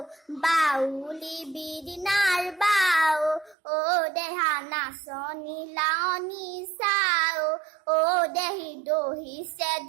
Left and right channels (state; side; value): drops out; left; at 3.6 s